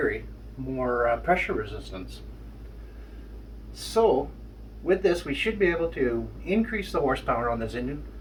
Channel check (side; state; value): both; identical; correlation 1.00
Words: more pressure resistance. So, with this, we should be able to increase the horsepower on this engine